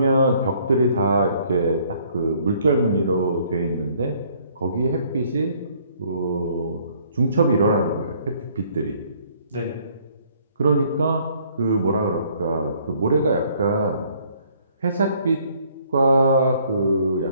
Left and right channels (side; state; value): both; inverted; correlation -0.63